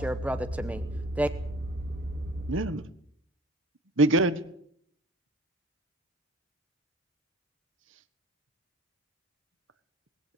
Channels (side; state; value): both; normal; correlation 0.47